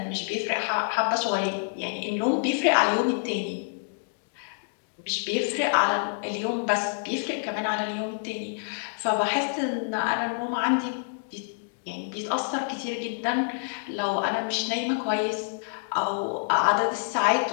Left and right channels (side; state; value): right; silent; digital silence